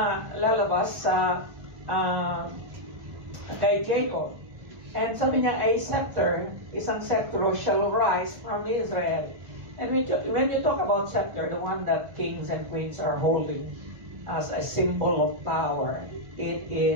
lalabas sa kay Jacob. And sabi niya, a scepter, isang scepter shall rise from Israel. And when you talk about scepter, the one that kings and queens are holding as a symbol of power, it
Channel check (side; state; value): left; late; 1.1 ms